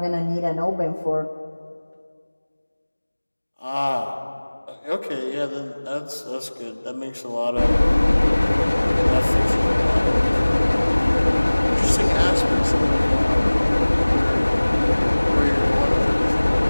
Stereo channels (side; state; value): both; inverted; correlation -1.00